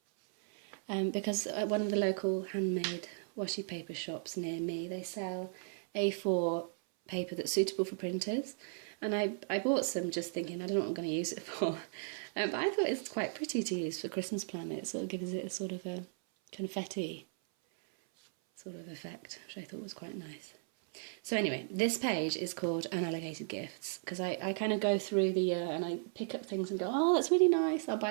because at one of the local handmade washi paper shops near me, they sell A4 paper that's suitable for printers, and I bought some just thinking I don't know what I'm going to use it for, but I thought it's quite pretty to use for Christmas planner. It sort of gives it a sort of a confetti sort of effect, which I thought was quite nice. So anyway, this page is called Unallocated Gifts, because I kind of go through the year and I pick up things and go, oh, that's really nice, I'll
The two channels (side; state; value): left; silent; 54 dB below the other